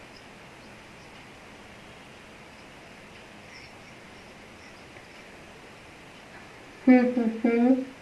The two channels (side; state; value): both; identical; correlation 1.00